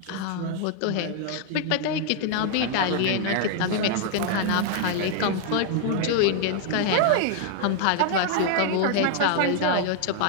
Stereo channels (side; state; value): both; different; correlation 0.00